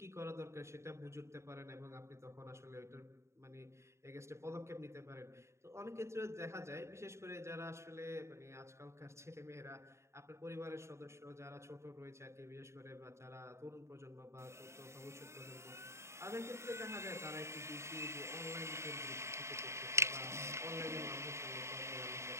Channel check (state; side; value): late; left; 0.13 ms